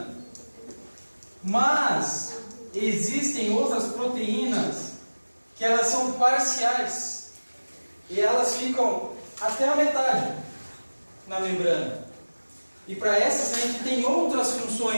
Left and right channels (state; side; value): inverted; both; correlation -1.00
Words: Mas existem outras proteínas que elas são parciais. E elas ficam até a metade na membrana. E para essas a gente tem outras